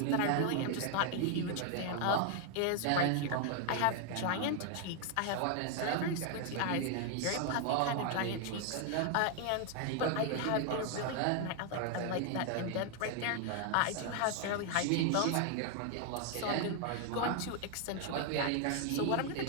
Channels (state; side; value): different; both; correlation 0.00